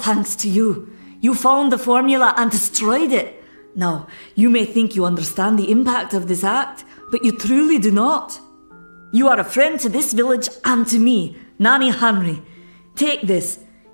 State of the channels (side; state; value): both; inverted; correlation -1.00